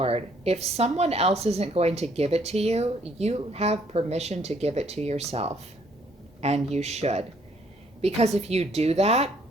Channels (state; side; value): normal; both; correlation 0.65